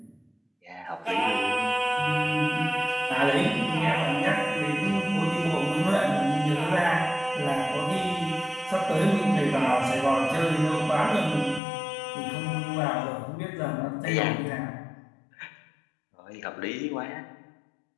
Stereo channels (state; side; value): drops out; right; at 11.6 s